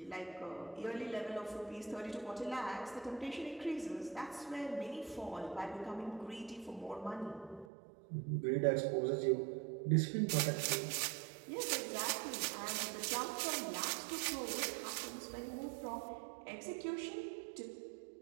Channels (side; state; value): left; drops out; at 7.7 s